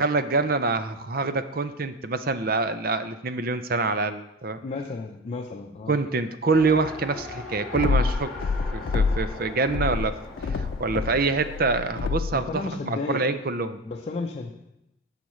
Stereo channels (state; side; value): normal; both; correlation 0.26